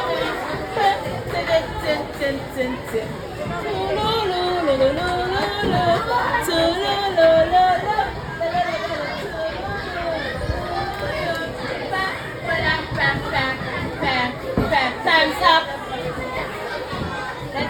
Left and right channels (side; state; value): both; identical; correlation 1.00